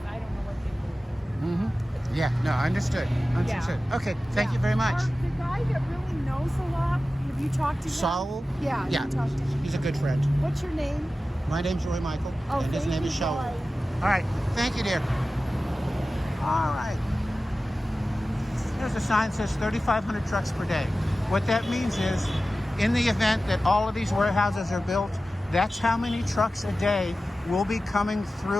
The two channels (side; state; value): both; normal; correlation 0.95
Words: I don't know what they were. Yeah, no, understood. Understood. Okay, thank you very much. The guy that really knows a lot, have you talked to him? Saul? Yeah, Yeah, you talked to him. he's a good friend. What's your name? My name's Roy Michael, Oh, and his thank name you, is Saul. Roy. All right, thank you, dear. All right. There's a sign that says 3,500 trucks per day. What that means is, in the event that all of these warehouses are built, that's how many trucks a day will be coming